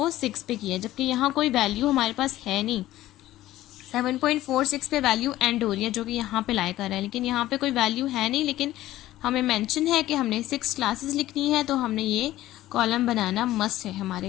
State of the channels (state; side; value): quieter; right; 15.1 dB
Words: 6 पे किया, जबकि यहाँ कोई वैल्यू हमारे पास है नहीं। 7.46 पे वैल्यू एंड हो रही है जो कि यहाँ पे लाई कर रहा है, लेकिन यहाँ पे कोई वैल्यू है नहीं, लेकिन हमें मेंशन है कि हमने 6 क्लासेस लिखनी है, तो हमने ये कॉलम बनाना मस्ट है हमारे